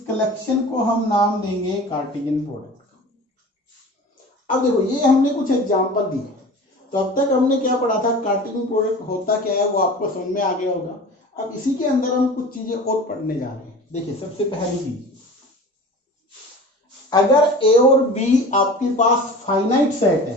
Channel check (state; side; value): normal; both; correlation 0.38